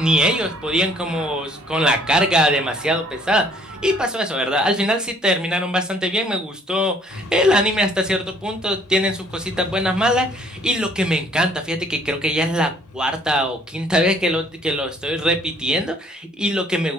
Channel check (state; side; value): normal; both; correlation 0.60